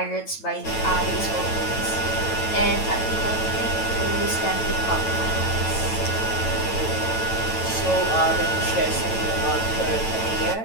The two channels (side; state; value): right; late; 9.1 ms